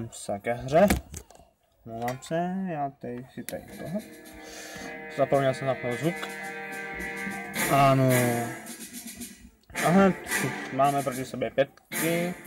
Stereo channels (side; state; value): both; identical; correlation 1.00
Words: se ke hře. Mluvám se, já si tady toho. Zapomněl jsem zapnout zvuk. Ano. Aha, máme proti sobě 5.